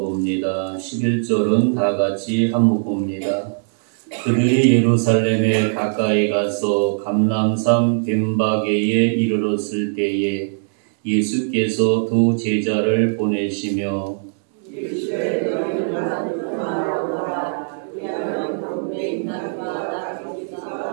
11절은 다 같이 한목 봅니다. 그들이 예루살렘에 가까이 가서 감람산 벳바게에 이르렀을 때에 예수께서 두 제자를 보내시며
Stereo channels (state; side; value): silent; left; 65 dB below the other